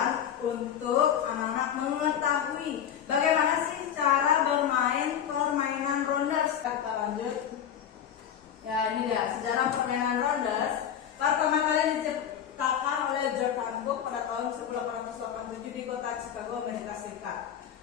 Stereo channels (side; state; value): right; quieter; 9.3 dB